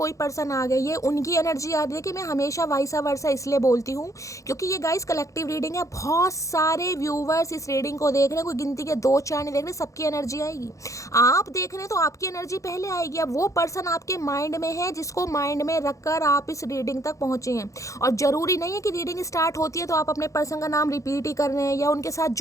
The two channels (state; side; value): late; right; 0.15 ms